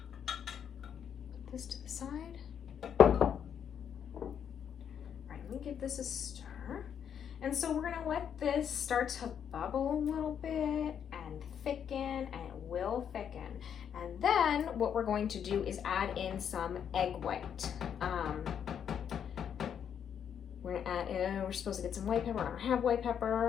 Put this to the side. All right, let me give this a stir. And so we're gonna let this start to bubble a little bit and thicken, and it will thicken. And then what we're going to do is add in some egg white. We're gonna add in, we're supposed to get some white pepper. I don't have white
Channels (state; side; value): quieter; right; 8.4 dB